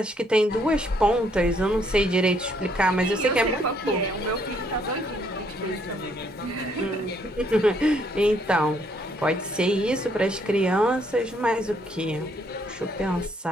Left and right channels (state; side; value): normal; both; correlation 0.69